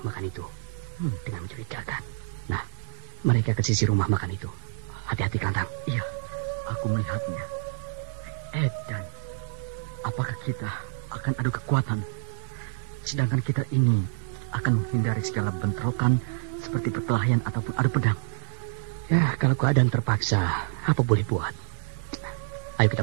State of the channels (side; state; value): left; silent; 59 dB below the other